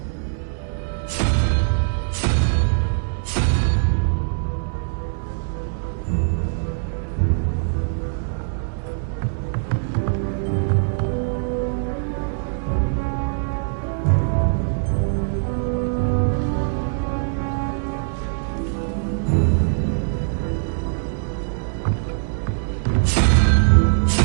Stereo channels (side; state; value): left; silent; digital silence